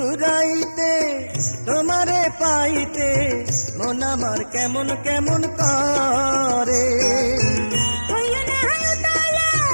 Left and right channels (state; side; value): inverted; both; correlation -1.00